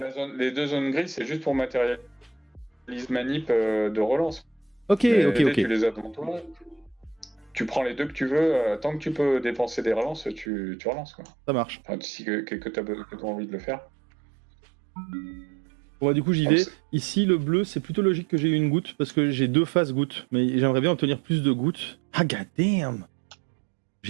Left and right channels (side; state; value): left; drops out; at 10.5 s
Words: les 2 zones grises, c'est juste pour matérialiser manip de relance. Ok. Les dés, tu les as devant toi. Tu prends les 2 que tu veux. Tant que tu peux dépenser des relances, tu relances. Quoi. Ça marche. Enfin, si que tu as envie de le faire. Bon, bah, du coup, j'y Donc, vais. Ici, le bleu, c'est plutôt logique que j'ai eu une goutte parce que j'ai 2 faces gouttes. Mais j'aimerais bien obtenir plus de gouttes. Ah, god damn!